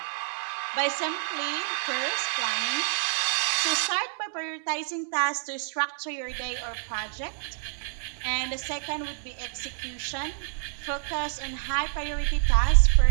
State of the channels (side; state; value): left; silent; 59 dB below the other